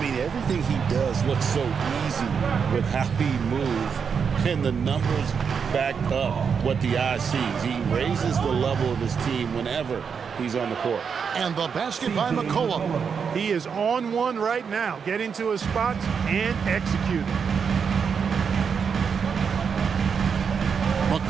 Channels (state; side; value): quieter; left; 6.4 dB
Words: mean, everything he does looks so easy with how he moves, and the numbers back up what the eye sees. He raises the level of his team whenever he's on the court. And the basket by McCollum. He is on one right now, getting to his spots and executing.